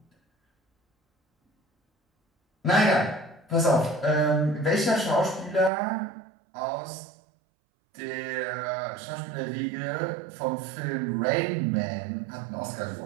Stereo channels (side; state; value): left; drops out; at 5.7 s